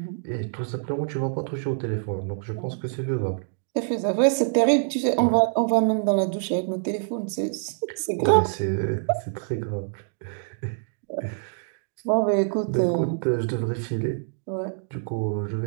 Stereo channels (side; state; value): left; silent; digital silence